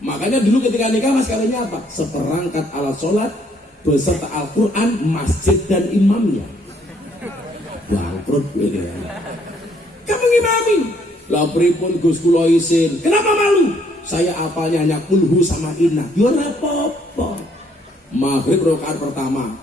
dulu ketika nikah mas kawinnya apa? Seperangkat alat sholat beserta Al-Quran, masjid dan imamnya. Bangkrut ini. Kamu ngimami? Lah pripun Gus kula isin. Kenapa malu? Saya apalnya hanya kulhu sama inna. Yo ora apa-apa. Maghrib rakaat pertama,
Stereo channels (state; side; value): normal; both; correlation 0.67